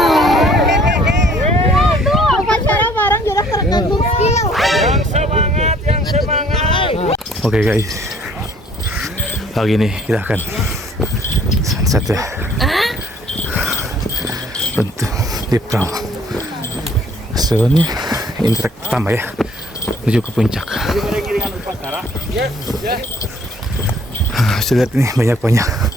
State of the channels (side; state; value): both; normal; correlation 0.59